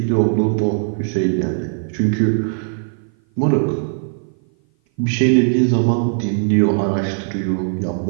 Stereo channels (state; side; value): silent; left; 56 dB below the other